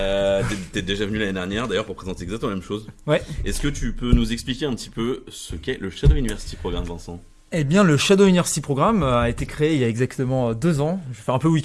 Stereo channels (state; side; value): identical; both; correlation 1.00